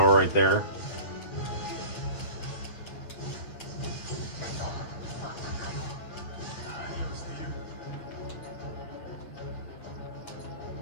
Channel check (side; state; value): right; late; 8.6 ms